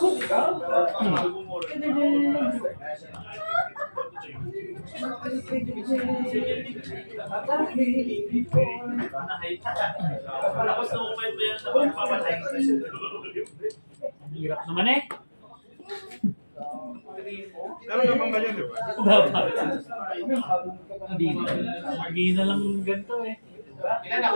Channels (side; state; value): both; inverted; correlation -1.00